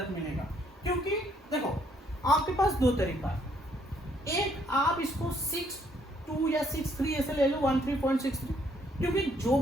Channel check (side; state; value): both; normal; correlation 0.68